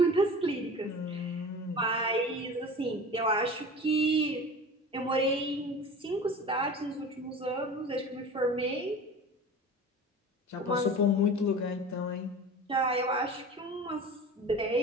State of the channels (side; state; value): both; normal; correlation 0.36